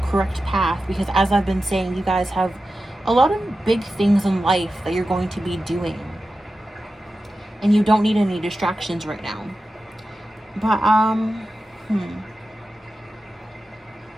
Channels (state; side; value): normal; both; correlation 0.92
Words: path, because as I've been saying, you guys have a lot of big things in life that you're going to be doing, and you don't need any distractions right now. But